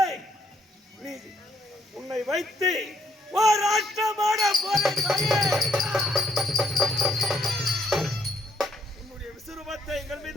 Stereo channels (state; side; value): normal; both; correlation 0.70